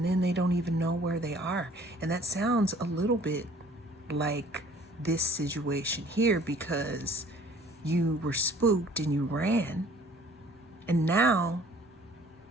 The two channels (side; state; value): both; normal; correlation 0.54